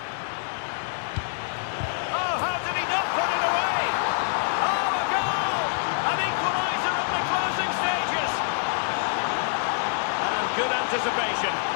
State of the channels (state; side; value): silent; right; 61 dB below the other